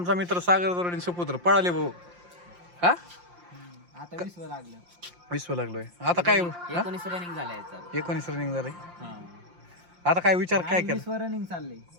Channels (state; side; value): late; left; 5.7 ms